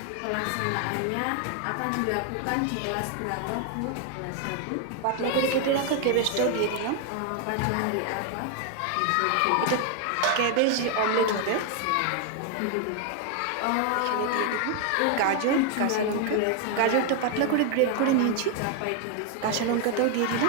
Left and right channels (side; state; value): both; different; correlation 0.00